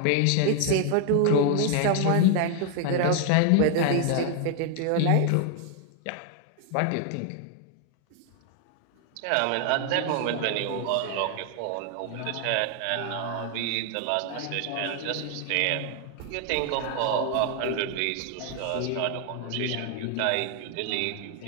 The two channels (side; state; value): both; different; correlation 0.00